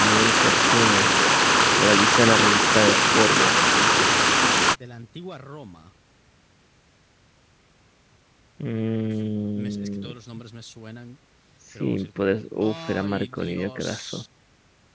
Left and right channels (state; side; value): identical; both; correlation 1.00